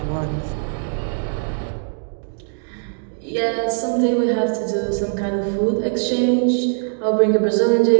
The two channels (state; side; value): silent; left; digital silence